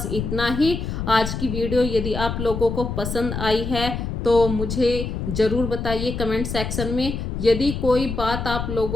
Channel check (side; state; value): left; noise; rumble, 4 dB below the sound